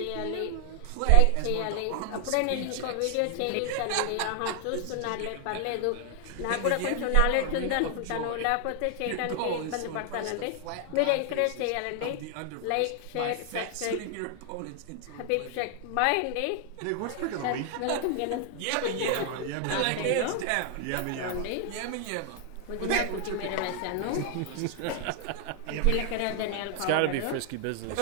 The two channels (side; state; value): both; different; correlation 0.00